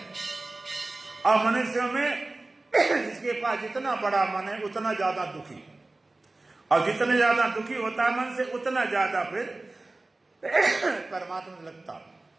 और मनुष्यों में जिसके पास जितना बड़ा मन है उतना ज्यादा दुखी, और जितने ज्यादा दुखी होता है मन से, उतना ज्यादा फिर परमात्मा में लगता।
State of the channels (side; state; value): left; quieter; 3.1 dB